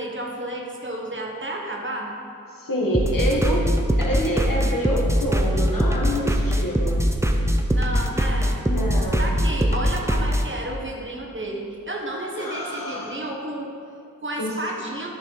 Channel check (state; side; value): normal; both; correlation 0.72